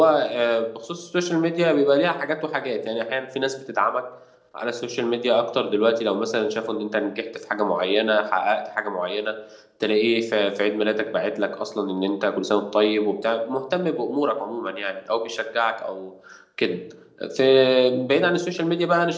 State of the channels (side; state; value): both; identical; correlation 1.00